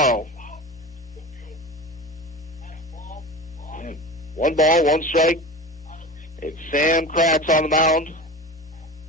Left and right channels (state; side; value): normal; both; correlation 0.31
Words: 1 ball, 1 strike. It's Sam Kratz on the mound.